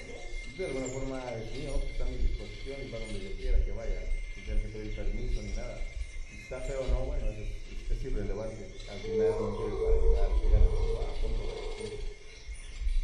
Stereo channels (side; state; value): both; identical; correlation 1.00